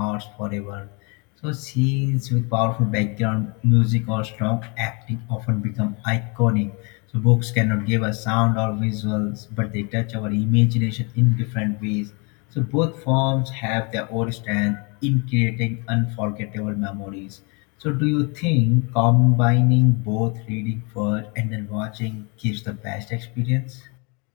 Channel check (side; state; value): right; quieter; 32.4 dB